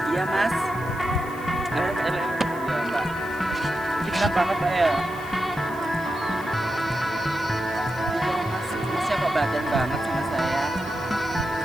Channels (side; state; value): left; noise; hiss, 21 dB below the sound